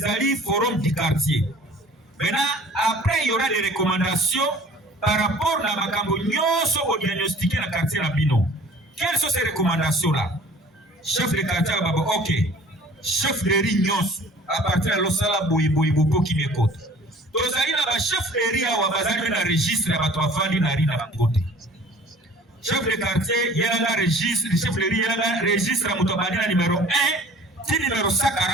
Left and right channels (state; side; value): normal; both; correlation 0.48